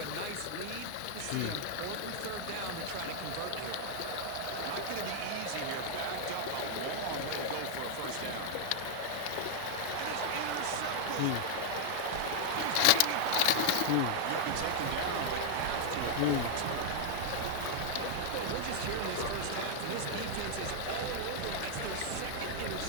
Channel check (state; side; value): different; both; correlation 0.00